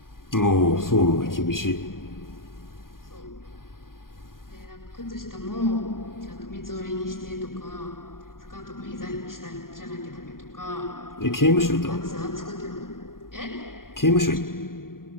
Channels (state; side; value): late; right; 0.91 ms